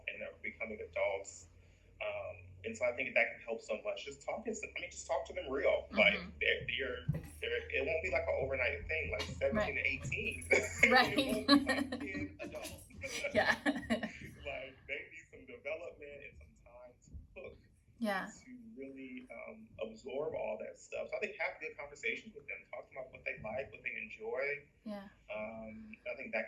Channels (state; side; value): identical; both; correlation 1.00